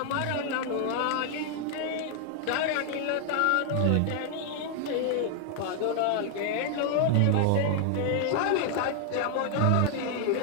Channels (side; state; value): both; different; correlation 0.00